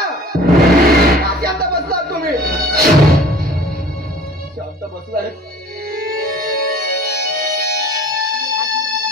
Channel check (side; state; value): both; normal; correlation 0.47